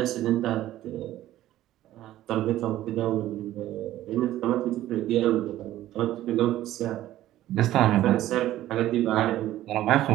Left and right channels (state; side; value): quieter; left; 14.1 dB